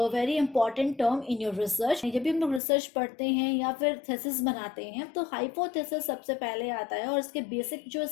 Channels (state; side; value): drops out; right; at 2.6 s